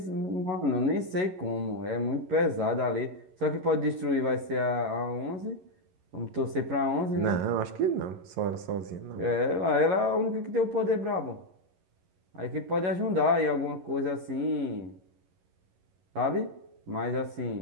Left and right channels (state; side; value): late; left; 11 ms